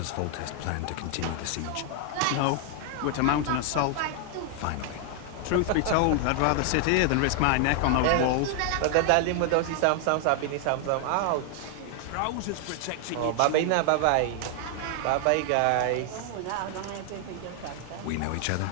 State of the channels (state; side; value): different; both; correlation 0.00